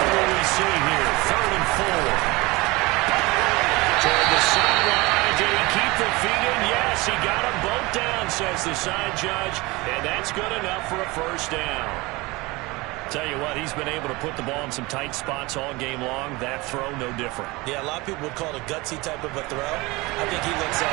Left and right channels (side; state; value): left; quieter; 23.0 dB